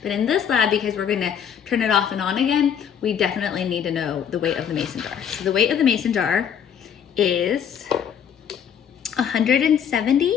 But in this lab, because we're going to turn it off and on again, we definitely need to know the weight of the mason jar. So the weight of the mason jar is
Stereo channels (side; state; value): right; quieter; 8.3 dB